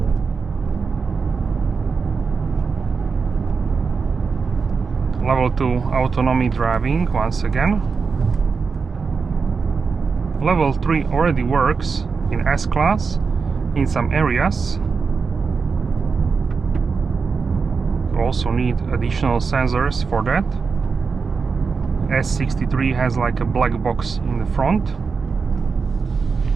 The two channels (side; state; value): left; quieter; 5.1 dB